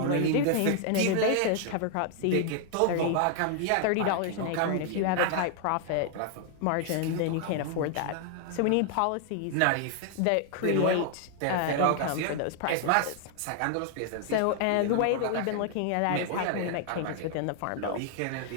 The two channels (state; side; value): different; both; correlation 0.00